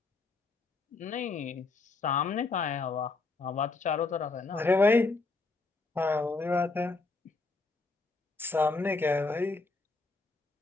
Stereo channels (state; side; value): quieter; right; 3.7 dB